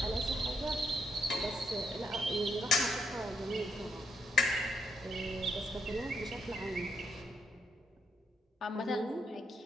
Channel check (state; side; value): normal; both; correlation 0.77